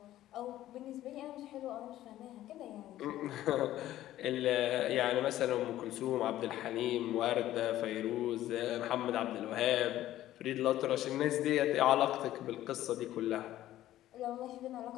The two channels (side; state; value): right; quieter; 13.8 dB